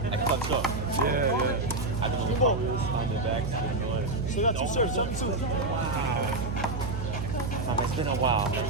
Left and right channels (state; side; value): noise; right; hum, 4 dB below the sound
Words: I clutch up. Yeah. I don't know the powers on the back. So you got 2 serves, 7-2. Wow. It's been a while.